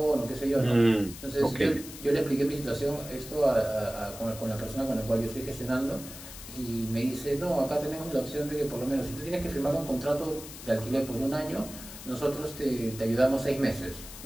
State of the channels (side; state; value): left; noise; hiss, 13 dB below the sound